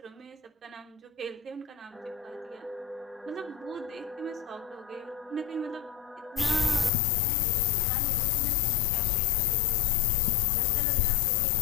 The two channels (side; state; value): right; drops out; at 6.9 s